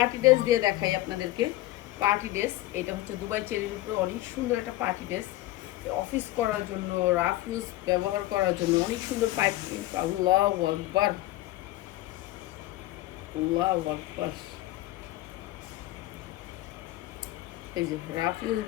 ড্রেস দিয়ে দেখাই আপনাদেরকে। পার্টি ড্রেস, এটা হচ্ছে দুবাই চেরির উপরে অনেক সুন্দর একটা পার্টি ড্রেস। অফিস করার জন্য, রাফ ইউজ ব্যবহার করার জন্য অনেক সুন্দর পাইপিং। আল্লাহু আকবার, আল্লাহু আকবার। এই যে রাফ ইউজ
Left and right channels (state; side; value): quieter; right; 16.8 dB